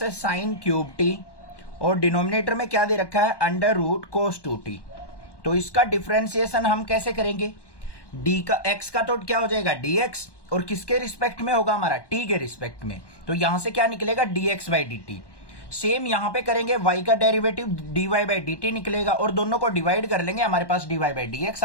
है साइन क्यूब टी, और डिनोमिनेटर में क्या दे रखा है अंडर रूट कोस 2t। तो इसका डिफरेंशिएशन हम कैसे करेंगे, d का x का तो क्या हो जाएगा dx, और किसके रिस्पेक्ट में होगा हमारा t के रिस्पेक्ट में, तो यहां से क्या निकलेगा dx बाई dt। सेम यहां पे करेंगे y का डेरिवेटिव dy बाई dt निकलेगा, और दोनों को डिवाइड कर लेंगे, हमारे पास dy बाई dx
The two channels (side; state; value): right; late; 1.1 ms